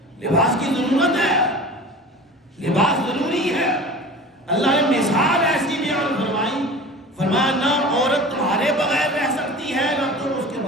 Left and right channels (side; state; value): both; normal; correlation 0.37